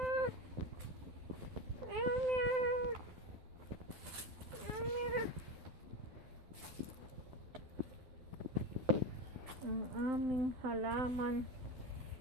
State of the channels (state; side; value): late; left; 12 ms